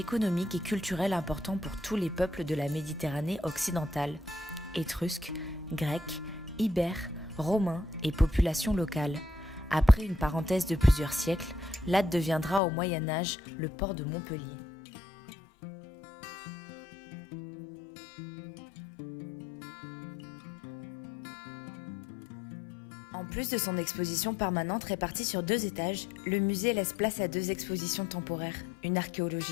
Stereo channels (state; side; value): drops out; right; at 12.6 s